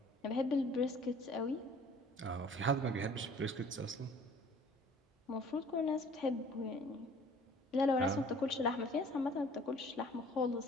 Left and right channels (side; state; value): both; normal; correlation 0.52